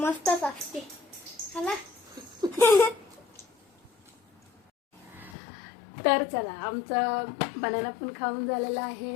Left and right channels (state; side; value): drops out; right; at 5.4 s